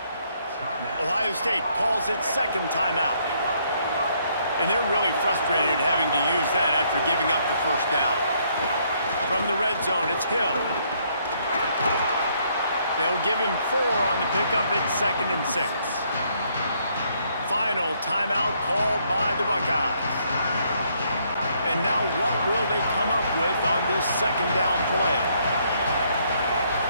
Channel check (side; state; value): both; inverted; correlation -0.70